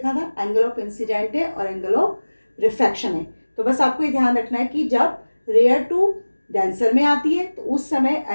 था, एंगल ऑफ इंसिडेंट है और एंगल ऑफ रिफ्रैक्शन है। तो बस आपको ये ध्यान रखना है कि जब रेयर टू डेंसर में आती है तो उस समय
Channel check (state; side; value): inverted; both; correlation -1.00